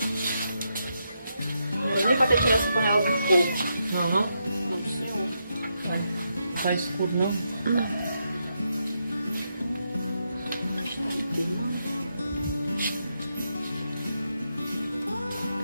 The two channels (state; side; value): inverted; both; correlation -0.82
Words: Não é nem pra ter tirado essa panela do fogo. Não, não? Não, senhor. Tá escuro, não? Não.